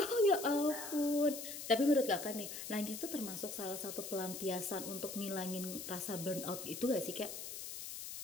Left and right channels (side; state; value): left; noise; hiss, 8 dB below the sound